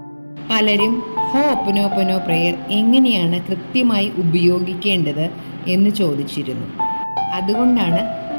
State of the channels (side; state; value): both; inverted; correlation -1.00